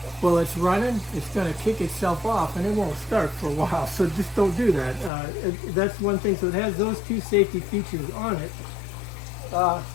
while it's running, it's going to kick itself off, and it won't start for a while, so just don't do that. That's one thing. So it has those 2 safety features on it.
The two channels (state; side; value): drops out; right; at 5.1 s